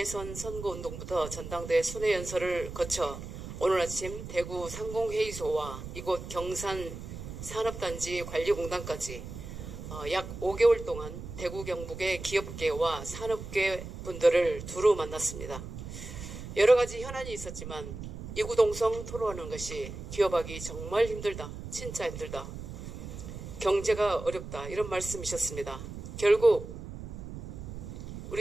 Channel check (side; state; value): right; noise; rumble, 10 dB below the sound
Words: 선거운동부터 전당대 순회연설을 거쳐 오늘 아침 대구 상공회의소와 이곳 경산 산업단지 관리공단까지 약 5개월 동안 대구 경북의 기업계와 산업계 분들을 두루 만났습니다. 여러 가지 현안이 있었지만 이구동성 토론하는 것이 기업하기 정말 힘들다, 진짜 힘들다, 경제가 어렵다 이런 말씀이셨습니다. 결국